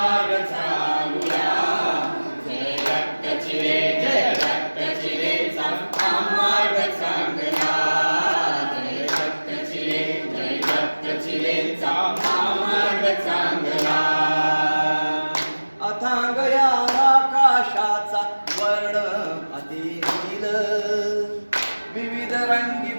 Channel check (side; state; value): both; inverted; correlation -1.00